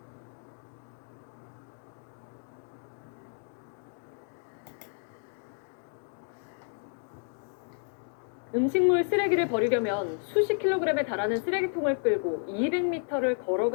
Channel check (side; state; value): right; silent; 57 dB below the other